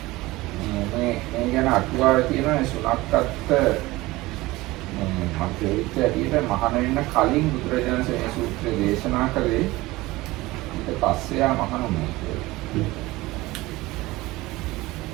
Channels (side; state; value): left; quieter; 19.7 dB